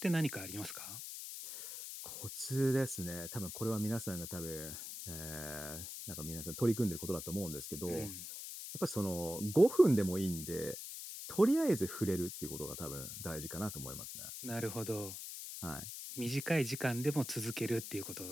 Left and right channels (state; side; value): noise; left; hiss, 8 dB below the sound